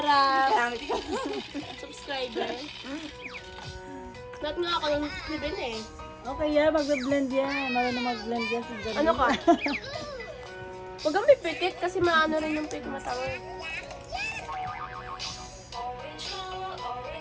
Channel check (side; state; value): both; identical; correlation 1.00